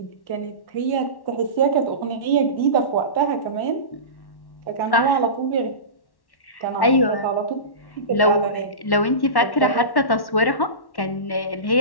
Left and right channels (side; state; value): right; late; 1.1 ms